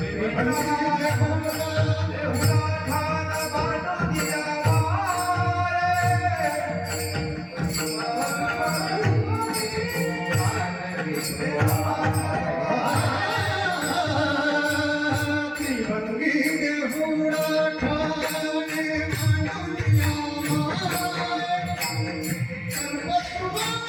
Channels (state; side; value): identical; both; correlation 1.00